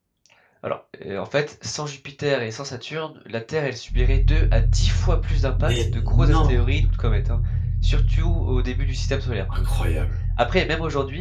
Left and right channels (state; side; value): identical; both; correlation 1.00